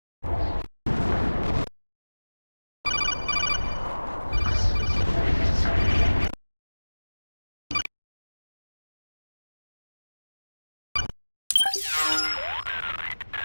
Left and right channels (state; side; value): inverted; both; correlation -1.00